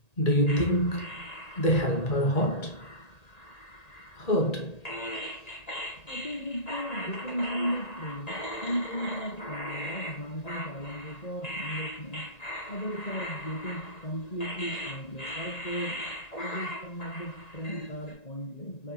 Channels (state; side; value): late; right; 1.9 ms